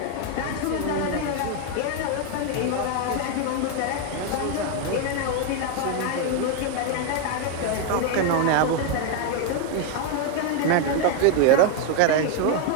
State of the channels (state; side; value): different; both; correlation 0.01